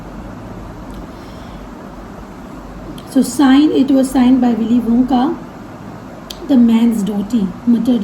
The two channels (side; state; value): both; identical; correlation 1.00